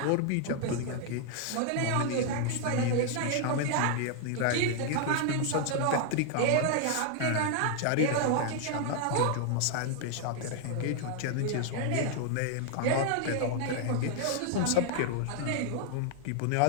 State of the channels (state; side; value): different; both; correlation 0.00